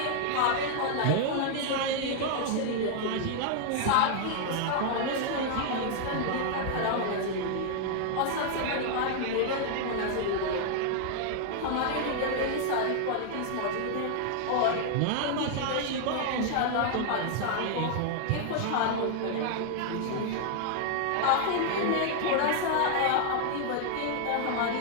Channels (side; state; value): both; different; correlation -0.01